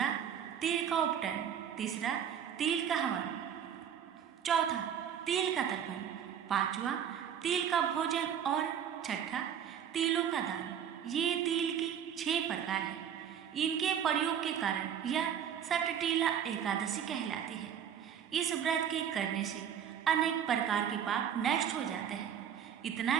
तिल का उपटन, तीसरा तिल का हवन, चौथा तिल का तर्पण, पांचवा तिल का भोजन और छठा तिलों का दान। ये तिल की 6 प्रकार है। इनके प्रयोग के कारण यह सटटीला एकादशी कहलाती है। इस व्रत के करने से अनेक प्रकार के पाप नष्ट हो जाते हैं। इतना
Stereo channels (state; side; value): quieter; left; 8.7 dB